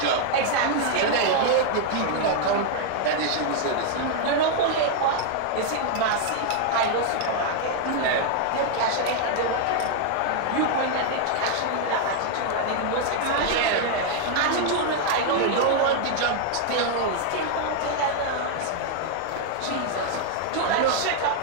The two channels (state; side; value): different; both; correlation 0.00